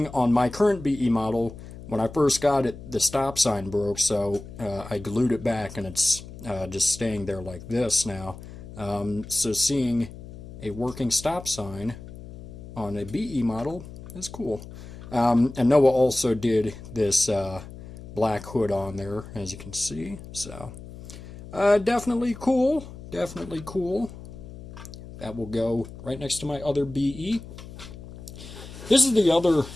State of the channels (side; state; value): left; noise; hum, 14 dB below the sound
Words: on my current BE model, when I first got it, the stop sign broke, so I glued it back, and it's just staying there like this now. So seeing a working stop sign on a BE model is cool. And Noah also did this black hood on there, as you can see. So definitely cool. Definitely cool. That will go right next to my other BE. This is the